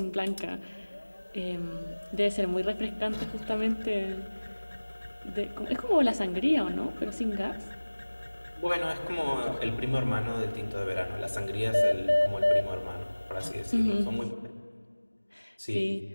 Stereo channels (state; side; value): inverted; both; correlation -1.00